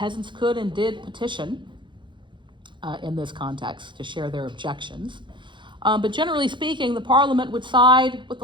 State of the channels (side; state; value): left; late; 0.23 ms